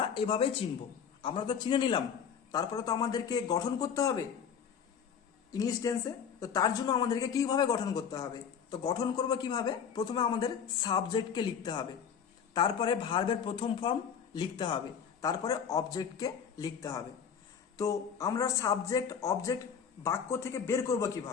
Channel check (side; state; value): right; quieter; 7.3 dB